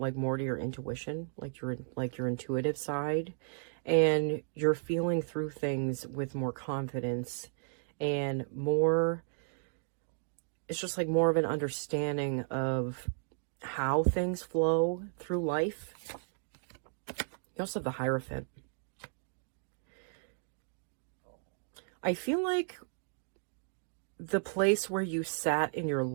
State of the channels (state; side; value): silent; left; digital silence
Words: more to your intuition, like your intuitive side, and you're feeling through things with more confidence and more, it's just like more of an understanding of how things flow through life. You also have the Hierophant. I feel like the place where you sat in your